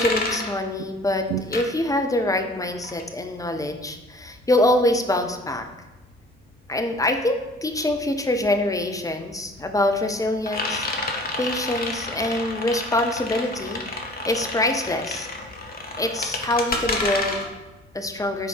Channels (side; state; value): both; normal; correlation 0.48